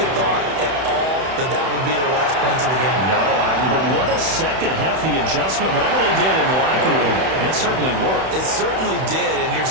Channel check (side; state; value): left; late; 31 ms